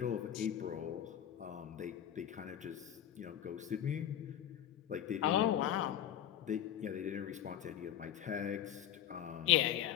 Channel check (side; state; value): right; quieter; 11.0 dB